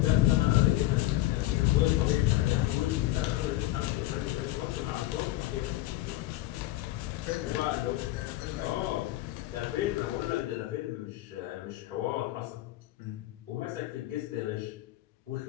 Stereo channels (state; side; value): quieter; right; 16.2 dB